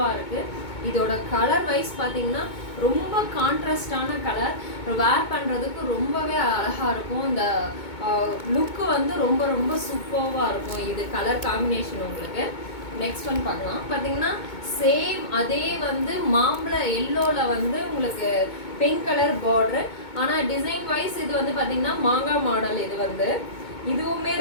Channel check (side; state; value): right; late; 2.2 ms